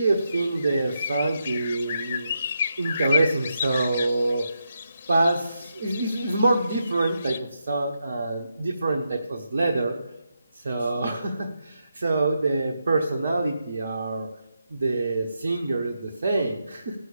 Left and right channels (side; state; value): both; inverted; correlation -0.84